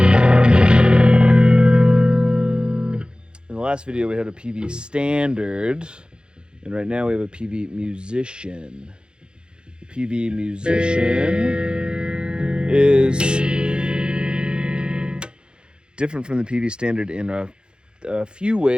In the last video, we had a Peavey Standard, and right now we have a Peavey Musician. The Peavey Musician is different from the Peavey Standard in a few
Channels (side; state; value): left; late; 0.050 ms